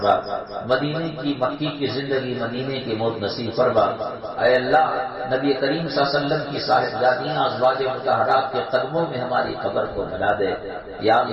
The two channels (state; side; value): identical; both; correlation 1.00